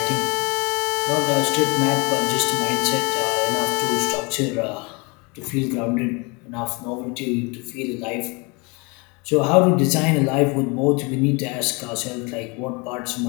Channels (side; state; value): right; quieter; 29.3 dB